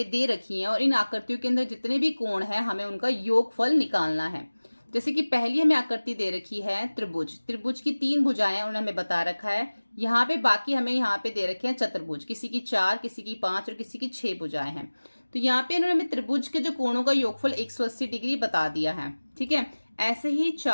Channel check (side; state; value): both; inverted; correlation -1.00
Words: दे रखी हैं और इन आकृतियों के अंदर जितने भी कोण हैं हमें उनका योगफल निकालना है। जैसे कि पहली हमें आकृति दे रखी है त्रिभुज, त्रिभुज की 3 भुजाएं उन्होंने हमें बता रखा है। यहाँ पे बाकी हमें यहाँ पे दे रखे हैं चतुर्भुज, किसी की 4, किसी की 5 और किसी की 6 भुजाएं हैं। तो यहाँ पे इन्होंने हमें त्रिभुज के जो कोणों का योगफल 180 डिग्री बता दिया है, ठीक है। ऐसे ही